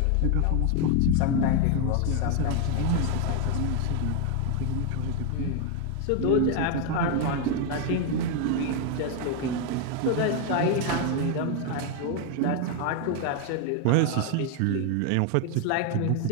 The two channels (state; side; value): different; both; correlation 0.01